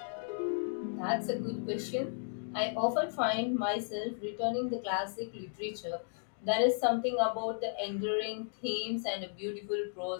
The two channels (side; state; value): right; silent; digital silence